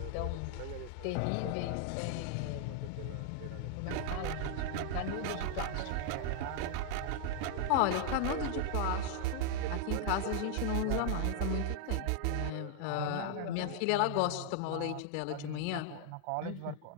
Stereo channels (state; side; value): different; both; correlation 0.00